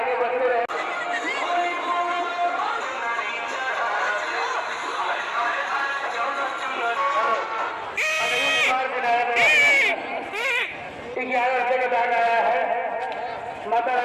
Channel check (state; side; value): identical; both; correlation 1.00